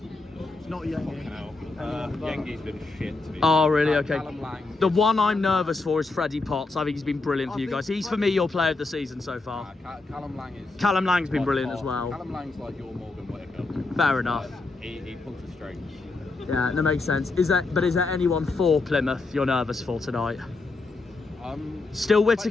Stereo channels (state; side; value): quieter; right; 3.5 dB